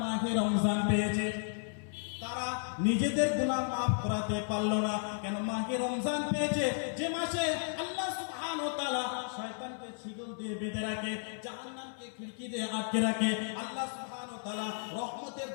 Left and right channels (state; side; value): silent; right; 55 dB below the other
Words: মাহে রমজান পেয়েছে তারা নিজেদের গুনাহ মাফ করাতে পারলো না। কেন? মাহে রমজান পেয়েছে, যে মাসে আল্লাহ সুবহানাহু ওয়া তাআলা শয়তানকে শিকল দিয়ে বেঁধে রাখে, জাহান্নামকে খিড়কি দিয়ে আটকে রাখে, আল্লাহ সুবহানাহু ওয়া তাআলা রহমতের